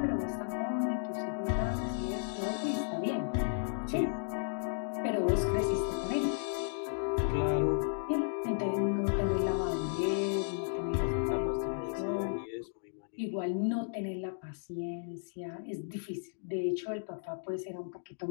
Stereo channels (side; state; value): right; silent; digital silence